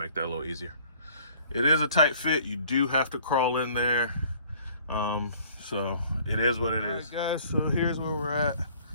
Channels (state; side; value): inverted; both; correlation -0.54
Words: that a little easier. It is a tight fit. You do have to crawl in there. So it is what it is. All right, guys, so here's where we're at.